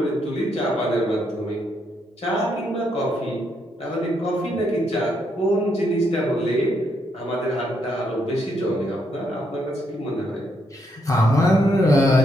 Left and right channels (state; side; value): normal; both; correlation 0.76